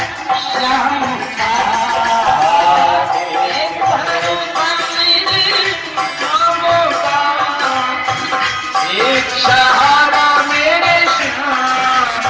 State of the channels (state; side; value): identical; both; correlation 1.00